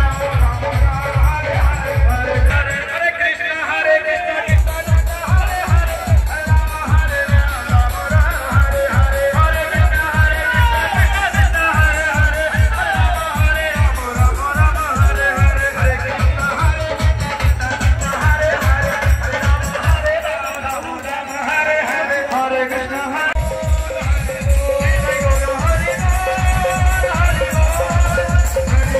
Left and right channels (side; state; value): both; identical; correlation 1.00